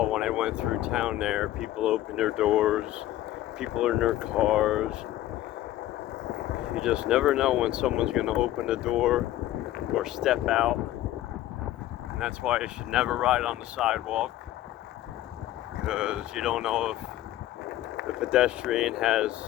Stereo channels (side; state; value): right; quieter; 14.2 dB